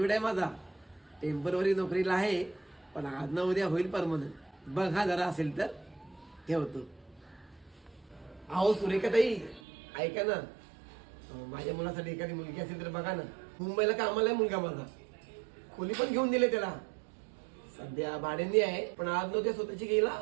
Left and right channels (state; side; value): drops out; left; at 9.6 s